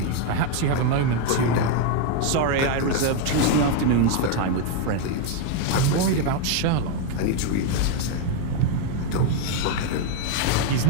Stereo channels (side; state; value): both; different; correlation 0.01